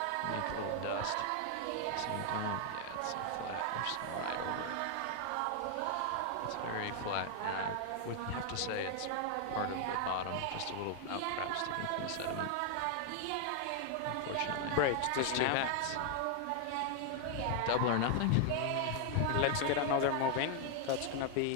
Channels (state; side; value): different; both; correlation 0.00